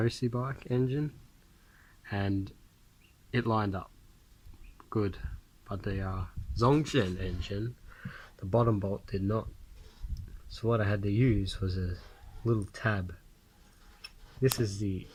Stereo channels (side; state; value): both; identical; correlation 1.00